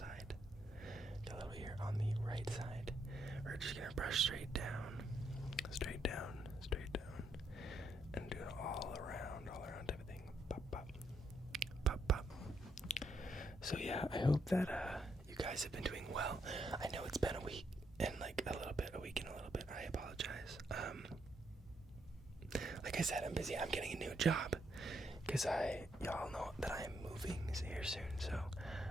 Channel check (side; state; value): both; normal; correlation 0.77